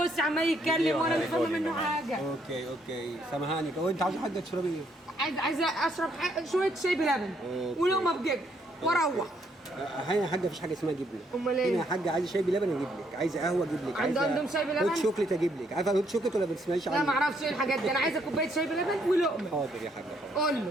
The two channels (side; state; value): both; normal; correlation 0.71